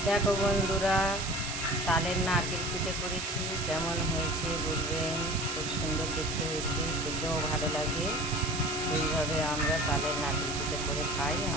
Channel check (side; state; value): right; noise; hiss, 4 dB below the sound